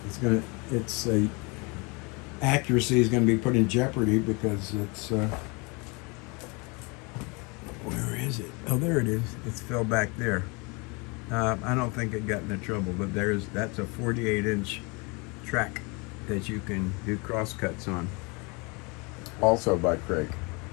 its accuracy is going to be put in jeopardy, because it's where is it? Oh, there it is. It's fell back there. I don't think it got into trouble, but that's a 48-inch track that you can do crosscuts on. Also by Craig.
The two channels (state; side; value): quieter; right; 29.3 dB